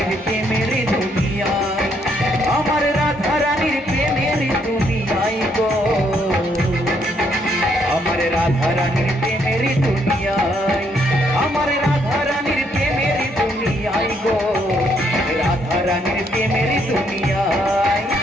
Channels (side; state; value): both; normal; correlation 0.72